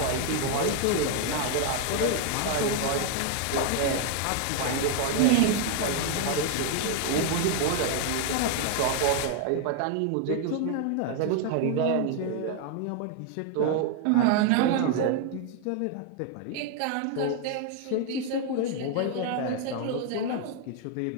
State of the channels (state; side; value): different; both; correlation 0.00